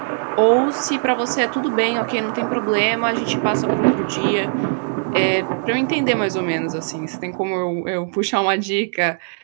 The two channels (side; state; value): left; silent; digital silence